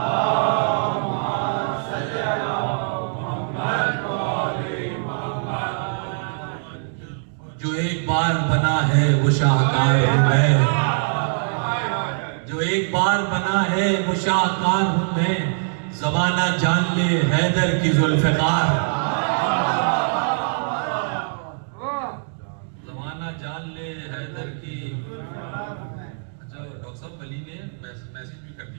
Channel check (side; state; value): left; silent; digital silence